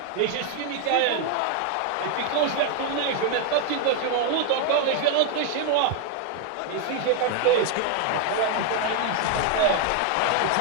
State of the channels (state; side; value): different; both; correlation 0.00